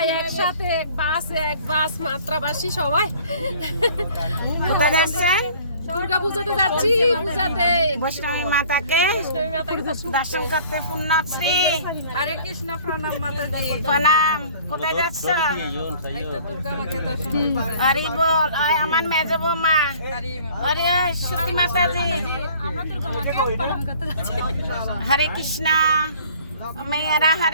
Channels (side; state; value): both; inverted; correlation -0.52